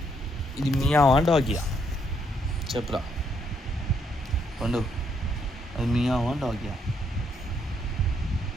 ఇది మియావా డాగియా? చెప్పురా పండు, అది మియావా డాగియా?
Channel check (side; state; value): both; normal; correlation 0.73